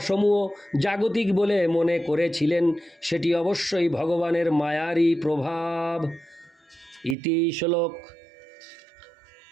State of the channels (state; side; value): drops out; left; at 7.2 s